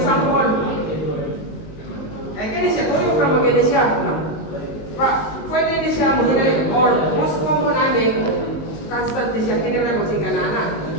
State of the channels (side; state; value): right; late; 19 ms